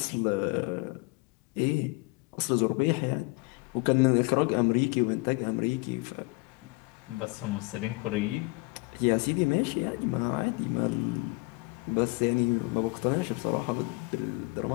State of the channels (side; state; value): right; quieter; 26.6 dB